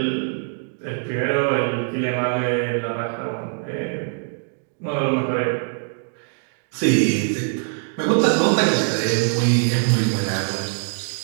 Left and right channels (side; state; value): left; silent; 64 dB below the other